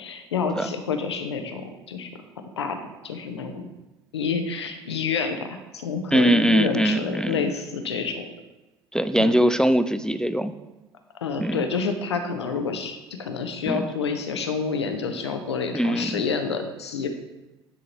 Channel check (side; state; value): both; normal; correlation 0.57